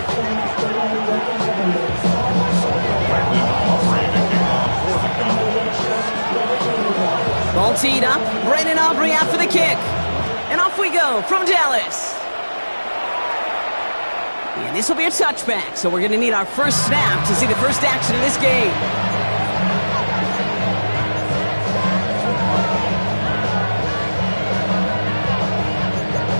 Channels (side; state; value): both; inverted; correlation -1.00